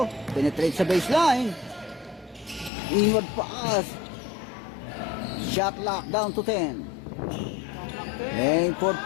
Penetrate sa baseline. Inward pass. Shot lock down to 10. Aim for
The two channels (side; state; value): right; drops out; at 2.7 s